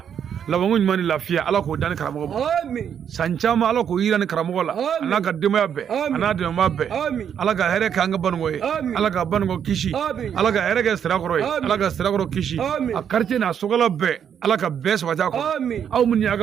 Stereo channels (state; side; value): quieter; left; 8.4 dB